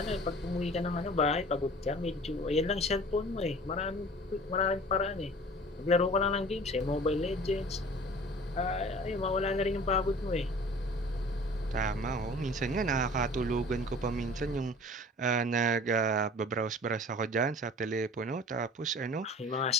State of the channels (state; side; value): normal; both; correlation 0.44